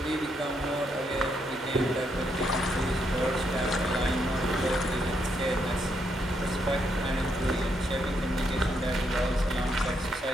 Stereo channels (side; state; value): both; normal; correlation 0.77